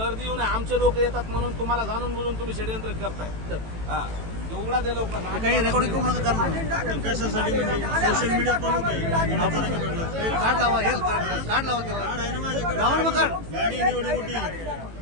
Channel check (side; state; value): left; late; 18 ms